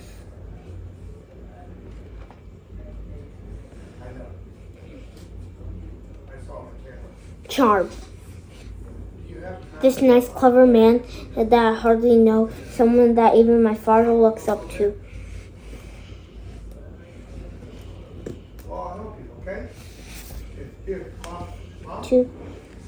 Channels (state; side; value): identical; both; correlation 1.00